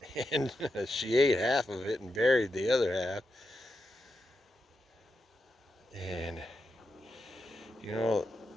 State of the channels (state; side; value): normal; both; correlation 0.87